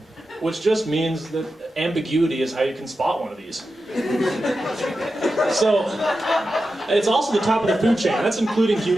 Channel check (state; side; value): normal; both; correlation 0.91